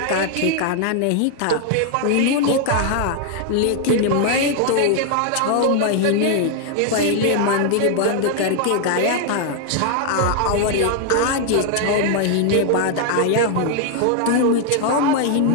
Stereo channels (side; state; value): both; different; correlation 0.00